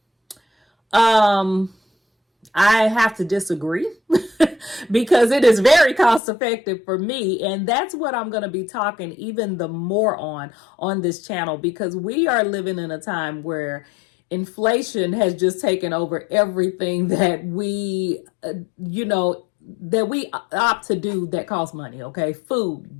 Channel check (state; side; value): drops out; right; at 6.2 s